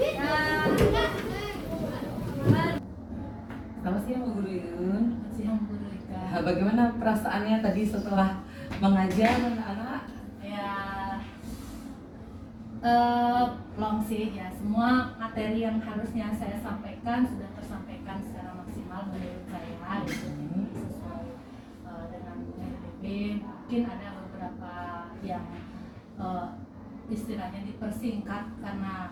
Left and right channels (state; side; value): identical; both; correlation 1.00